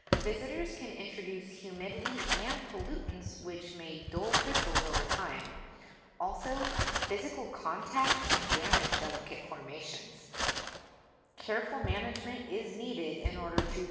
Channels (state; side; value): identical; both; correlation 1.00